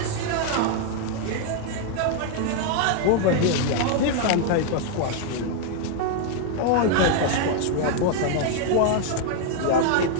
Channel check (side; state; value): both; different; correlation 0.00